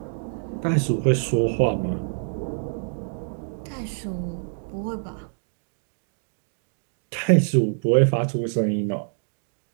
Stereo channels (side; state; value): left; silent; digital silence